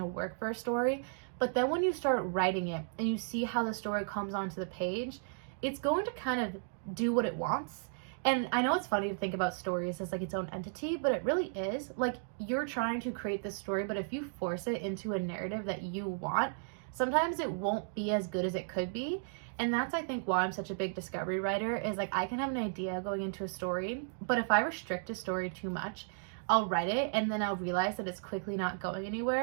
work for a story, but then when you start writing it and you see how the story comes onto the page, it's going to kind of do what it wants. And I know it's funny to think about stories as like its own entity, but it really is. Like, you're trying to create this story, but if you force it into a narrative that you want, sometimes it won't be as good as it could be. And that's, I think, why I'm such a big discovery writer, is like I can have an idea going into a story, but if I restrict a story too much, I'll write it and then I'll realize that it's quickly not going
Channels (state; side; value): silent; left; digital silence